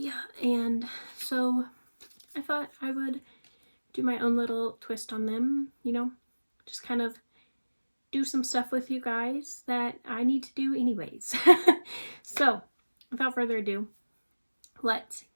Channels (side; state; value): both; inverted; correlation -1.00